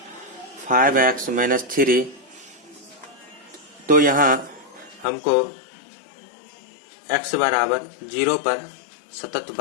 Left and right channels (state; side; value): drops out; right; at 5.1 s